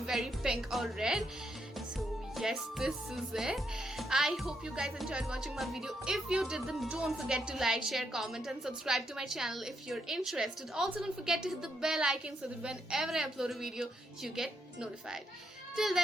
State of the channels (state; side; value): normal; both; correlation 0.79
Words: pink or red. So yes, this is it. I hope you guys enjoyed watching my video. If you did, then don't forget to like, share, comment and subscribe to my channel if you're interested. Also, don't forget to hit the bell icon so that whenever I upload a video, you get notified. Till